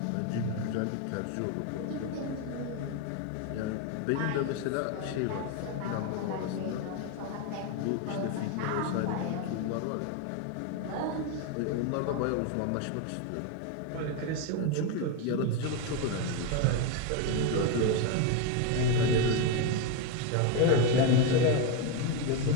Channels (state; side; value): different; both; correlation 0.02